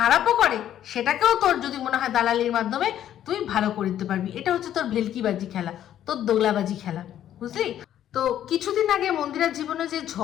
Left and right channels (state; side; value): quieter; right; 11.1 dB